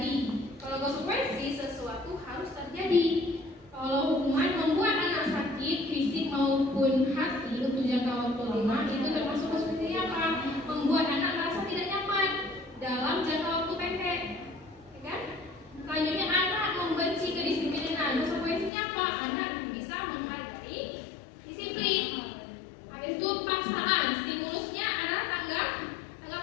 Kalau konsekuensi sesuatu harus terjadi. Kalau hukuman membuat anak sakit fisik maupun hati untuk jangka waktu lama, itu termasuk konsekuensi apa? Membuat anak merasa tidak nyaman dalam jangka waktu pendek, ya kan? Selanjutnya anak membenci kedisiplinan. Konsekuensinya apa? Anak bisa menghargai disiplin. Habis itu paksaan, stimulusnya adalah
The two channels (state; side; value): drops out; right; at 18.7 s